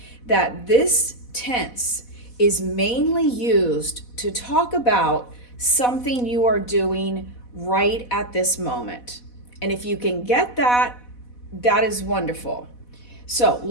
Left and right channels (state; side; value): late; right; 4.1 ms